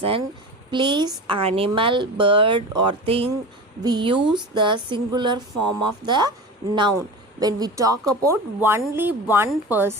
place, animal, bird or thing, we use the singular form of the noun. When we talk about only one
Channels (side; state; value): both; normal; correlation 0.30